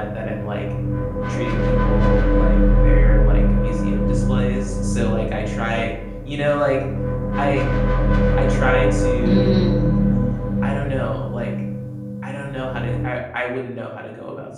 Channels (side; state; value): both; identical; correlation 1.00